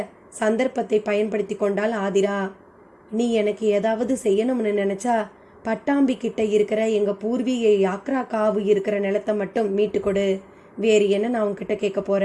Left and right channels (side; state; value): both; identical; correlation 1.00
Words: சந்தர்ப்பத்தை பயன்படுத்தி கொண்டாள் ஆதிரா. நீ எனக்கு ஏதாவது செய்யணும்னு நினைச்சா பட்டாம்பி கிட்ட இருக்கிற எங்க பூர்வீக யாக்ரா காவு இருக்கிற நிலத்தை மட்டும் மீட்டு கொடு. வேறு என்ன நான் உன்கிட்ட கேட்க